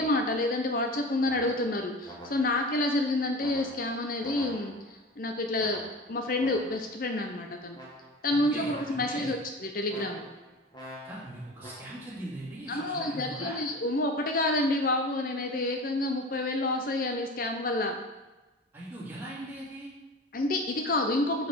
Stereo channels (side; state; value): both; normal; correlation 0.35